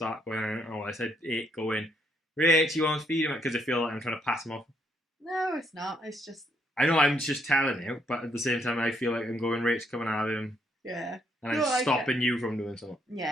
going, oh, I said 8, go in. Rach, he wants feeding, because I feel like I'm trying to pass him off. No, it's not. It's just... I know I'm just telling you, but at the same time, I feel like I'm going, Rach, come and have him. Yeah. And I'm stopping you from doing something.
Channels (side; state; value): both; normal; correlation 0.72